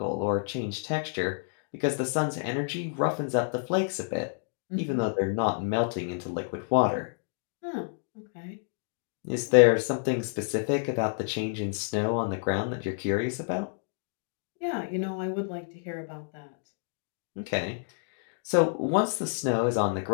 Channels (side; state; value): right; silent; digital silence